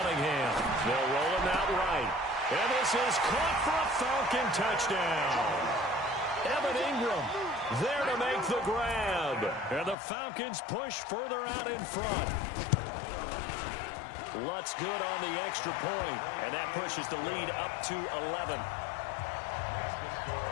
They'll roll him out right. And this is caught for a Falcon touchdown. Evan Ingram there to make the grab. And the Falcons push further out in front. Lutz good on the extra point, and that pushes the lead up to 11.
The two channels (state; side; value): drops out; right; at 10.0 s